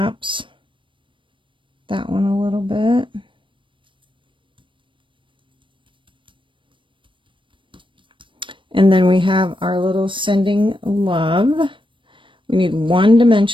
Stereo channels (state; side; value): late; left; 0.25 ms